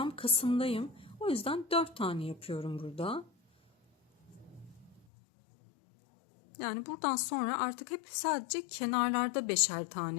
kısımdayım. O yüzden 4 tane yapıyorum burada. Yani buradan sonra artık hep sadece kenarlarda beşer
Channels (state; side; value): drops out; right; at 5.1 s